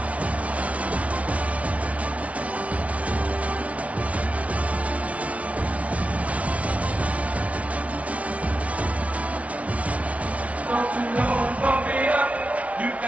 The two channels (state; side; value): late; left; 0.065 ms